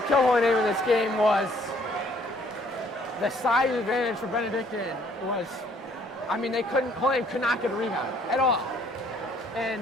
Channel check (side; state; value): both; normal; correlation 0.62